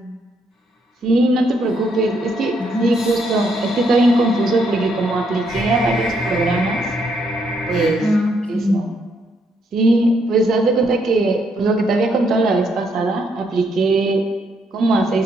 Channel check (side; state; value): both; normal; correlation 0.74